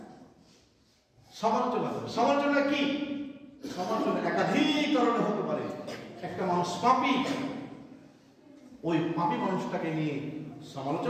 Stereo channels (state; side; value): identical; both; correlation 1.00